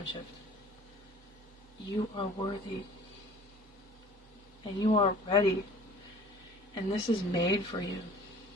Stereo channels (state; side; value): normal; both; correlation 0.47